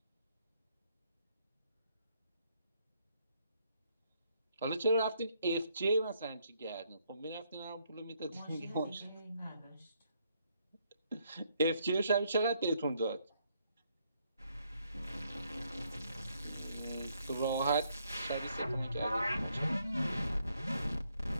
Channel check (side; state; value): both; inverted; correlation -0.72